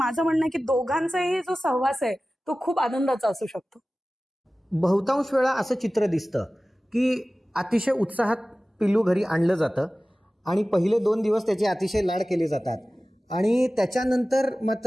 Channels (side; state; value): both; normal; correlation 0.97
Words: म्हणणं आहे की दोघांचाही जो सहवास आहे तो खूप आनंदाचा असू शकतो. बहुतांश वेळा असं चित्र दिसतं की अतिशय उत्साहात पिल्लू घरी आणलं जातं आणि पहिले 2 दिवस त्याचे अतिशय लाड केले जातात आणि त्याच्यानंतर